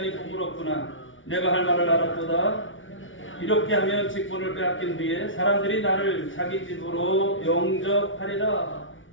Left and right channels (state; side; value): late; right; 0.57 ms